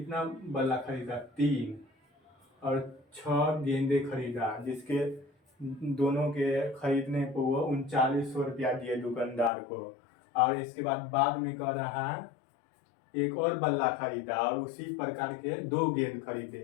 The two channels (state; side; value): drops out; right; at 9.5 s